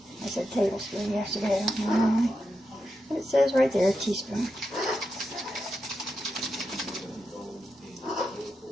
I said tablespoon yesterday, I don't know why. But it says right there, a teaspoon.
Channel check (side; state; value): both; normal; correlation 0.87